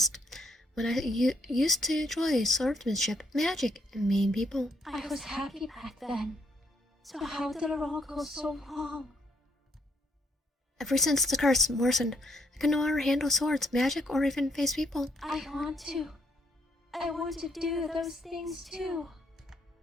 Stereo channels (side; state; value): both; normal; correlation 0.71